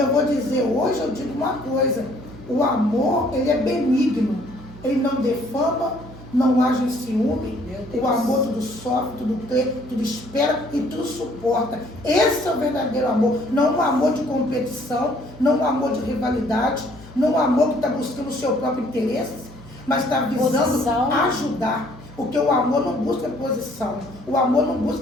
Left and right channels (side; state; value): both; normal; correlation 0.61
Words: vou dizer, hoje eu digo uma coisa, o amor, ele é benigno, ele não defama, não age em ciúme, o amor tudo sofre, tudo crê, tudo espera e tudo suporta. Esse é o verdadeiro amor, não um amor de competição, não um amor de rivalidade, não um amor que está buscando o seu próprio interesse, mas está visando ajudar. Porque o amor não busca posição, o amor não